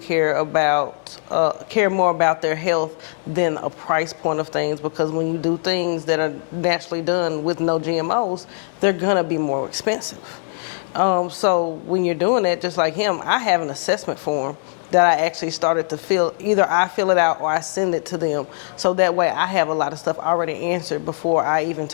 more about their health than a price point of things, because when you do things that are naturally done with no GMOs, they're gonna be more expensive. So when you're doing that, just like him, I have an assessment form that I actually started to fill. Either I fill it out or I send it to them. So that way I have a lot of stuff already answered before I even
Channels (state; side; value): silent; right; digital silence